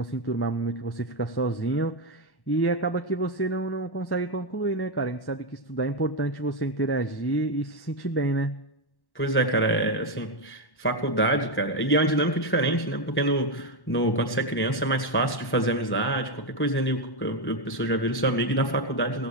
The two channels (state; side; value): late; right; 1.1 ms